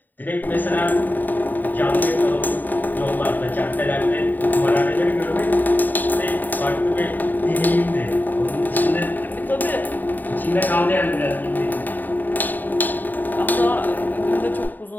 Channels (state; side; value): late; right; 0.088 ms